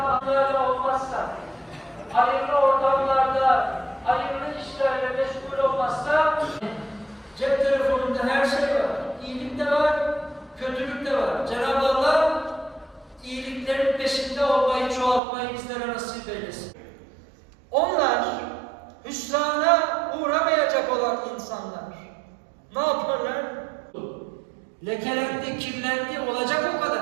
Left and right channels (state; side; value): drops out; left; at 15.2 s